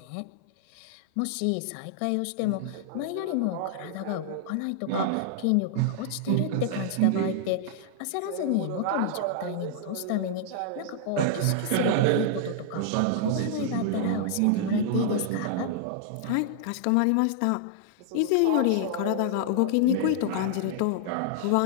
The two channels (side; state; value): both; different; correlation -0.01